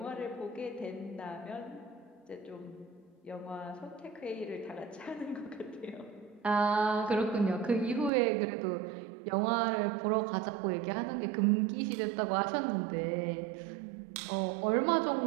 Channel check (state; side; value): drops out; left; at 8.1 s